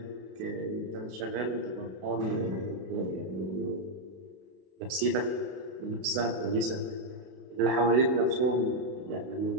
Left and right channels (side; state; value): left; late; 31 ms